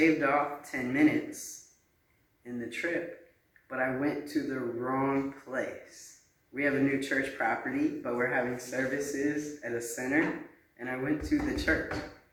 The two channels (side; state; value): both; identical; correlation 1.00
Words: off 10 minutes in the trip, but I went to the wrong place. We have a new church property, but we're having services at a center, and I went to the church.